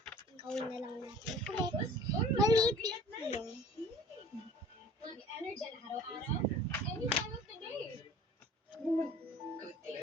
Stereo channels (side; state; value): both; normal; correlation 0.48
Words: Gawin na lang natin ulit. Malipit yun. Mag-energy araw-araw, any time of the day.